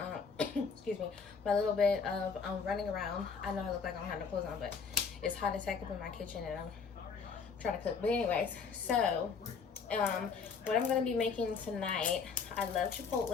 excuse me, my little bit of running around. I know I look like I don't have no clothes on, but it's hot as heck up in my kitchen and I'm trying to cook. But anyways, so what I'm gonna be making tonight, I love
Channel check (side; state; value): right; quieter; 5.6 dB